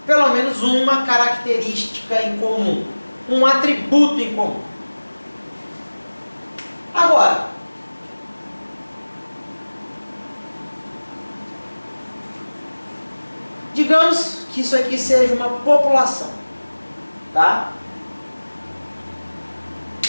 pelo menos uma característica em comum, um atributo em comum. Agora, digamos que isso aqui seja uma população, tá?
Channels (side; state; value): both; inverted; correlation -1.00